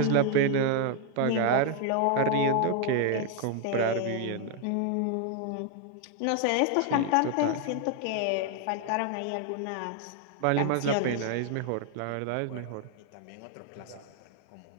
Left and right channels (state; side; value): different; both; correlation 0.00